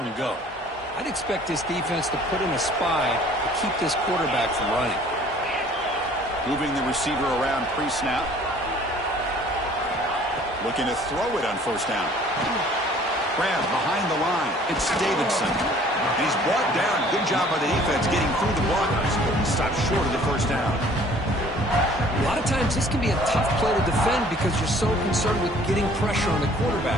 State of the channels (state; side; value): normal; both; correlation 0.54